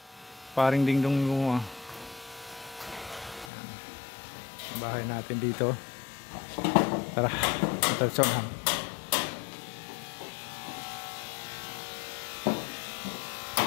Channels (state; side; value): drops out; right; at 3.5 s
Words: Paring dingdong yung bahay natin dito. Tara, matalsonan.